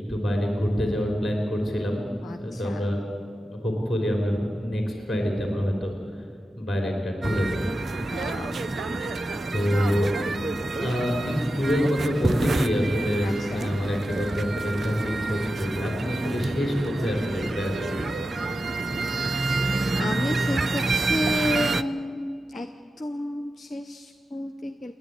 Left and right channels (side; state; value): both; normal; correlation 0.91